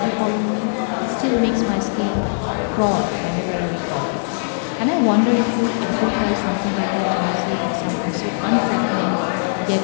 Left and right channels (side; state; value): right; silent; 56 dB below the other